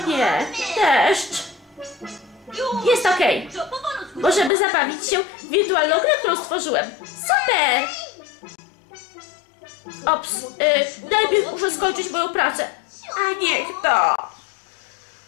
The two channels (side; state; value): right; drops out; at 4.5 s